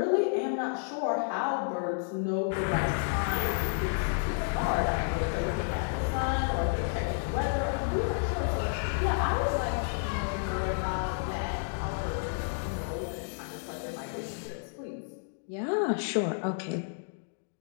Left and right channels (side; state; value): right; silent; digital silence